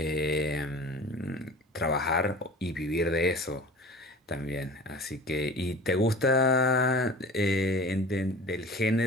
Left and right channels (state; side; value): normal; both; correlation 0.40